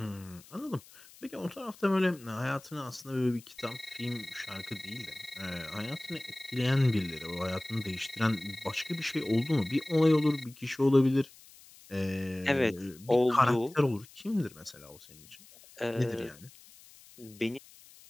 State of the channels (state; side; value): noise; left; hiss, 22 dB below the sound